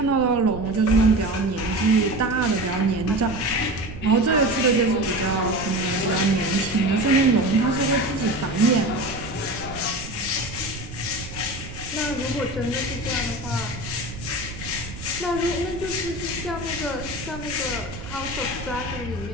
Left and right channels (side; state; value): right; noise; rumble, 12 dB below the sound